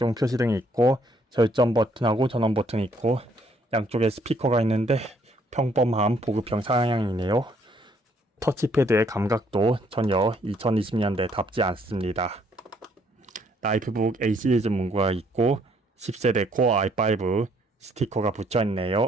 표시 등이 있고 절전 버튼하고 전원 버튼이 있고 양쪽에 스피커가 있는데 평범한 보급형 상향이네요. 터치패드의 감각도 전혀 2020년대답지 않습니다. 라이프북 A 시리즈 문구가 있고 10세대 코어 i5 스티커가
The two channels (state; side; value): normal; both; correlation 0.67